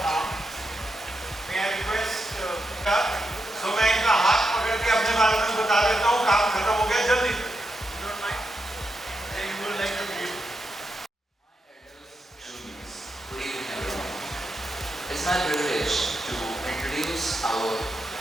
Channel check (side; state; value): both; normal; correlation 0.85